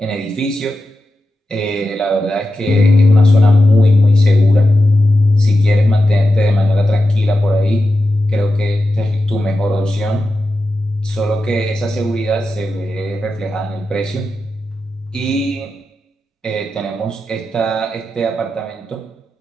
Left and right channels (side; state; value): both; normal; correlation 0.91